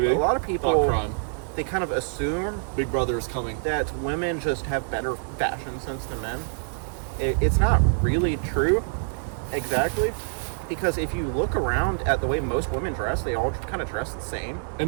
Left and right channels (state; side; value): silent; left; 61 dB below the other